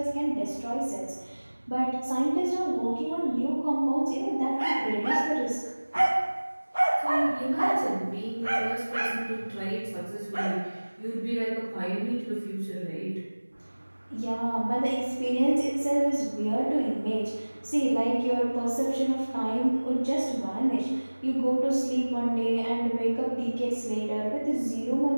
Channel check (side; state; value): both; inverted; correlation -1.00